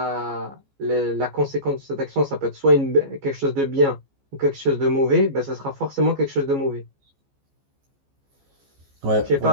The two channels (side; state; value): left; late; 14 ms